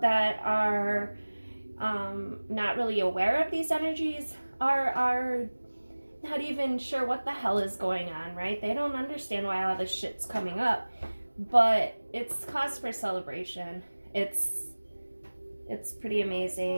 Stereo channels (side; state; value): both; inverted; correlation -1.00